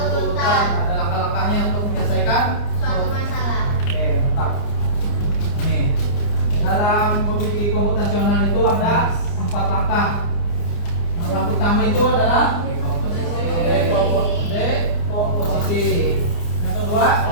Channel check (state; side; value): late; right; 29 ms